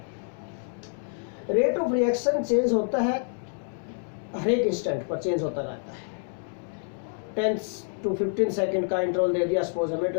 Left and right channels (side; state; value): right; silent; digital silence